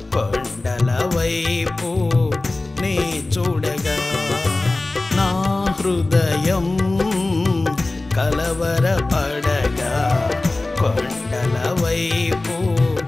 కొండల వైపు నీ చూడగా నా హృదయం కలవరపడగా కొండల వైపు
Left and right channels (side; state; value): right; quieter; 3.0 dB